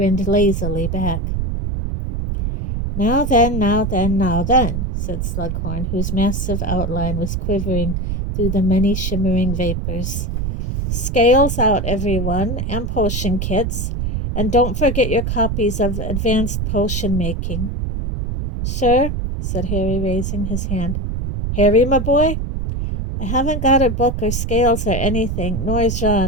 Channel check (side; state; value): right; noise; rumble, 2 dB below the sound